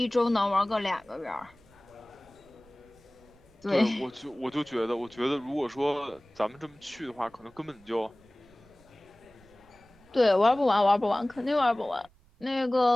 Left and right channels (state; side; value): noise; right; rumble, 29 dB below the sound